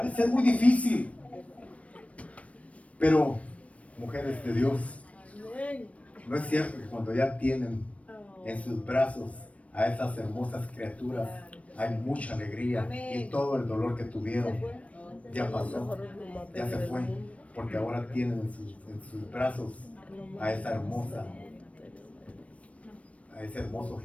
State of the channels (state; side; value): late; right; 0.065 ms